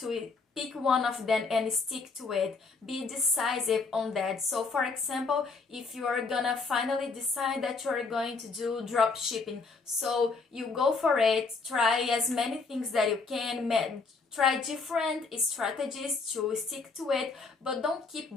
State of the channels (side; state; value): right; quieter; 4.3 dB